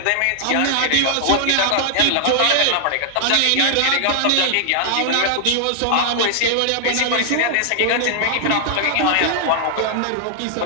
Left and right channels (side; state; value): both; different; correlation 0.00